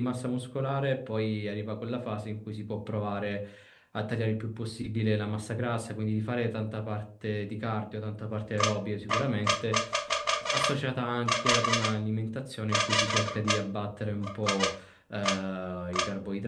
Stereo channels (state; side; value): identical; both; correlation 1.00